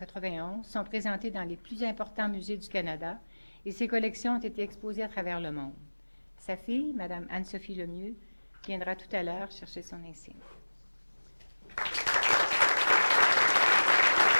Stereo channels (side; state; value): both; inverted; correlation -1.00